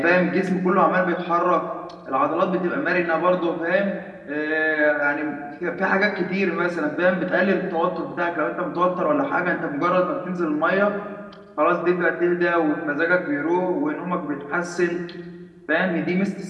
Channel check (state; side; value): identical; both; correlation 1.00